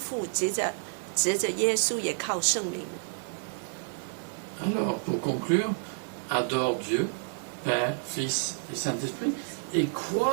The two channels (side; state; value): left; silent; digital silence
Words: 藉着耶稣，也靠圣灵。 Alors, pour conclure, adore Dieu, Père, Fils et Saint-Esprit, et